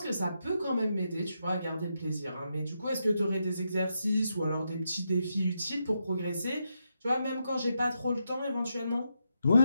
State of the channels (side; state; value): both; inverted; correlation -0.84